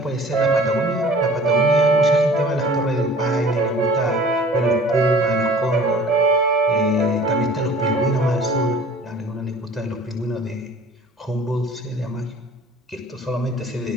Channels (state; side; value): normal; both; correlation 0.48